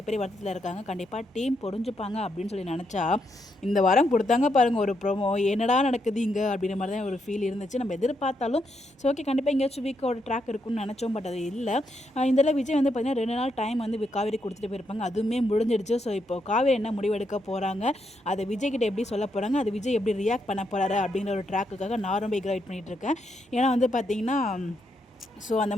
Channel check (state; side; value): normal; both; correlation 0.79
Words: வருத்தத்தில் இருக்காங்க. கண்டிப்பாக டீம் பொறிஞ்சுப்பாங்க அப்படின்னு சொல்லி நினச்சா இந்த வாரம் கொடுத்தாங்க பாருங்கள் ஒரு ப்ரோமோ. என்னடா நடக்குது இங்கே அப்படின்ற மாதிரி தான் ஒரு ஃபீல் இருந்துச்சு. நம்ம எதிர்பார்த்தாலும் ஸோ ஓகே கண்டிப்பாக எங்கேயாச்சும் வீக்கோட ட்ராக் இருக்குன்னு நினச்சோம். பட் அது இல்லை. இதில் விஜய் பார்த்திங்கன்னா 2 நாள் டைம் காவேரி கொடுத்துட்டு போயிருப்பாங்க. அதுவுமே முடிஞ்சிடுச்சு. ஸோ இப்போ காவேரி என்ன முடிவெடுக்க போகிறாங்க, அதை விஜய் கிட்ட எப்படி சொல்ல போகிறாங்க, அது விஜய் எப்படி ரியாக்ட் பண்ண போகிறாரு அப்படிங்கிற ஒரு ட்ராக்குக்காக நான் ரொம்ப ஈகராக வெயிட் பண்ணிகிட்டு இருக்கேன். ஏன்னா பார்த்தீங்கன்னா ஸோ அந்த